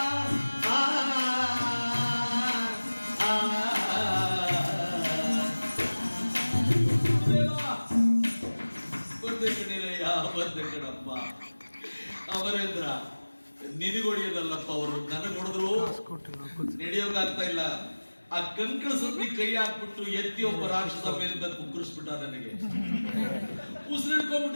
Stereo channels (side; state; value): both; inverted; correlation -1.00